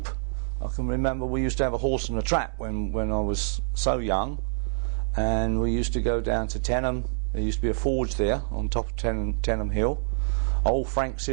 I can remember we used to have a horse and a trap when I was so young, and we used to go down to Tenham. There used to be a forge there on top of Tenham Hill. Old Frank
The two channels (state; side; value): silent; left; digital silence